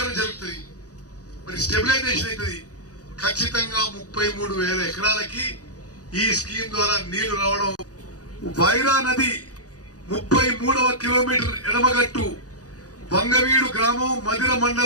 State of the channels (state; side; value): late; right; 0.67 ms